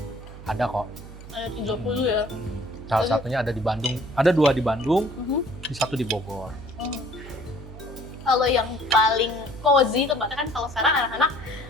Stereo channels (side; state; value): right; noise; hum, 14 dB below the sound